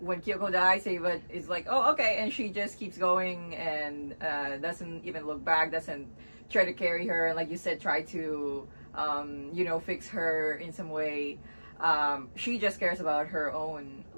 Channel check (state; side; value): inverted; both; correlation -1.00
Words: Kyoko dies, Ava is like, "Oh, okay," and she just keeps going and doesn't even look back, doesn't try to carry her, like you said, try to fix her in some way. She just cares about her own